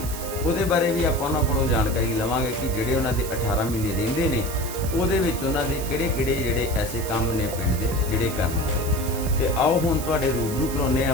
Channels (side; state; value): right; noise; hiss, 10 dB below the sound